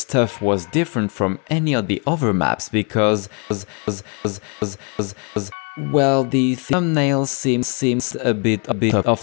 was different from any of the other maps because, well, the thumbnail seems a bit off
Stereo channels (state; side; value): quieter; right; 36.5 dB